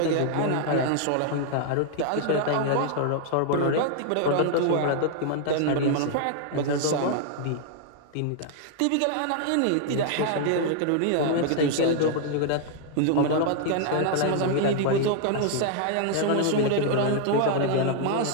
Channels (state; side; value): different; both; correlation 0.00